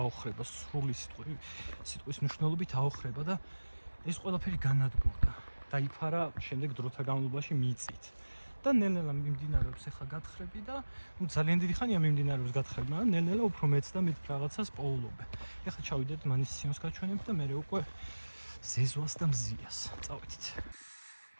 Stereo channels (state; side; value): inverted; both; correlation -1.00